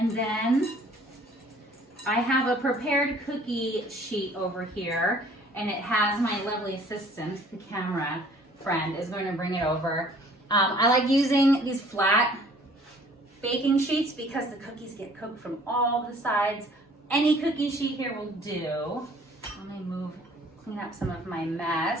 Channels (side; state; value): both; normal; correlation 0.55